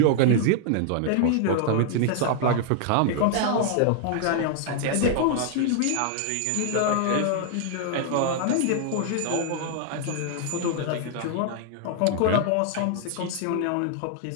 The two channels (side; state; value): both; different; correlation 0.00